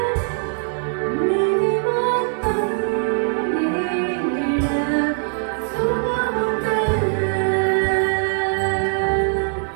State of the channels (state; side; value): silent; left; 56 dB below the other